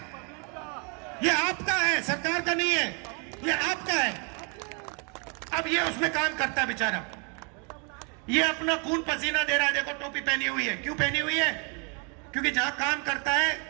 ये आपका है, सरकार का नहीं है। ये आपका है। अब ये उसमें काम करता है बेचारा, ये अपना खून पसीना दे रहा है। देखो टोपी पहनी हुई है। क्यों पहनी हुई है? क्योंकि जहां काम करता है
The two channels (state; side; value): quieter; left; 35.3 dB